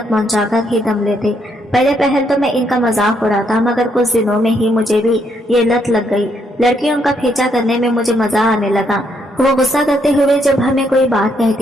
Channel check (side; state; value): both; normal; correlation 0.74